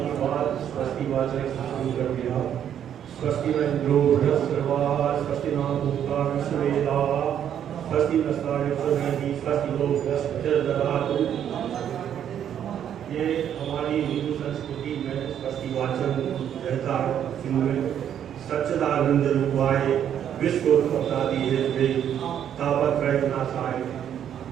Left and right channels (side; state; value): left; quieter; 9.6 dB